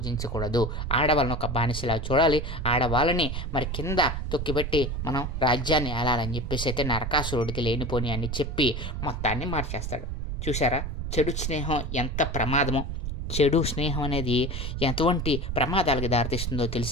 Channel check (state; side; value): noise; right; rumble, 3 dB below the sound